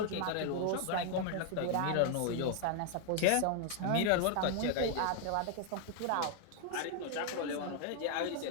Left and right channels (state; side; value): different; both; correlation 0.00